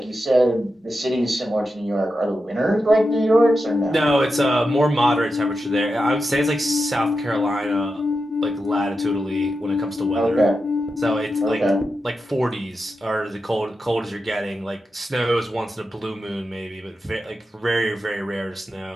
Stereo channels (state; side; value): normal; both; correlation 0.89